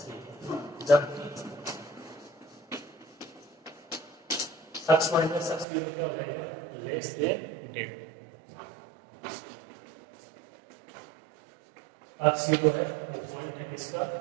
जबकि अक्ष माइनस अक्ष 0 क्या हो जाएगा, लेस देन डेल। अक्ष 0 है वो पॉइंट है किसका,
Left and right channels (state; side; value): drops out; left; at 5.7 s